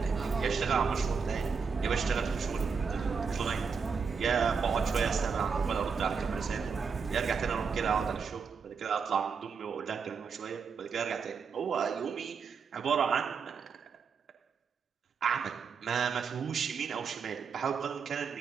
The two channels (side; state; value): left; quieter; 5.8 dB